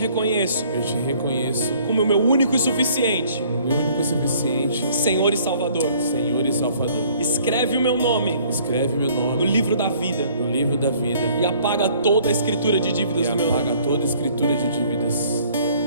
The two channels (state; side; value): inverted; both; correlation -0.57